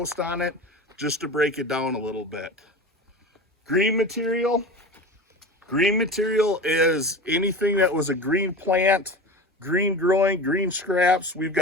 on it just to break it down a little bit. Green material is anything that was a green plant, green growing, green scraps. We've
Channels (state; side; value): normal; both; correlation 0.31